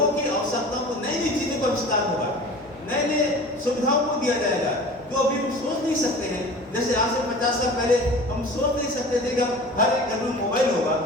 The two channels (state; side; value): normal; both; correlation 0.39